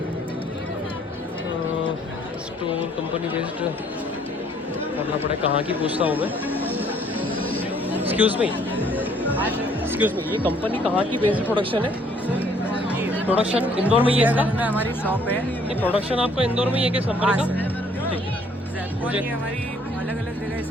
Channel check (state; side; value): normal; both; correlation 0.62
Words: स्टोर कंपनी बेस्ड करना पड़े, कहाँ की पूछता हूँ मैं। एक्सक्यूज़ मी, ये कंपनी कहाँ की बेस्ड प्रोडक्शन है? प्रोडक्शन इंदौर में ही है इसका? हमारी शॉप है। ये प्रोडक्शन आपका इंदौर में ही है किस कंपनी का? ठीक है, मुझे हमारी अलग अलग जगह